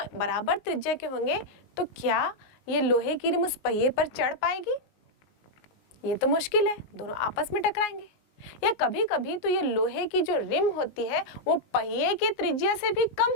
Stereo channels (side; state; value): right; late; 19 ms